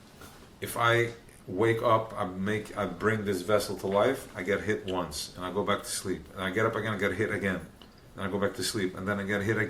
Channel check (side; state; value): both; identical; correlation 1.00